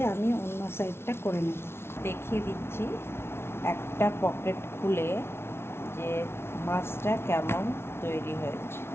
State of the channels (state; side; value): late; right; 0.12 ms